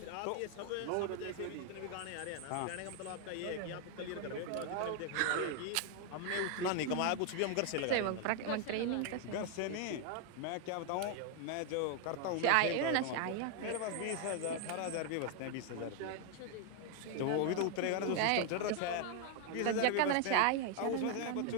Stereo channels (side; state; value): both; different; correlation 0.00